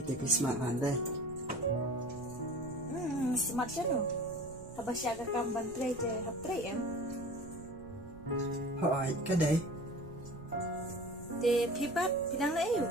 smart van đây. Smart chano. Habasya ka kam bantre je haptre em. Hỏi cái đấy, Te pi pat pinang lai yu.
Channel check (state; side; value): noise; right; rumble, 17 dB below the sound